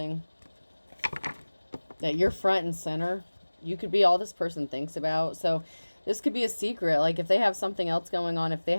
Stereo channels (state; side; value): inverted; both; correlation -1.00